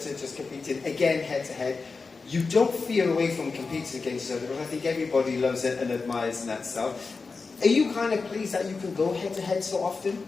just competing again head to head. You don't feel away from competing against each other, but I think everybody loves it and admires that stuff. Are you kind of pleased that you can go head to head so often?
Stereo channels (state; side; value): quieter; right; 4.4 dB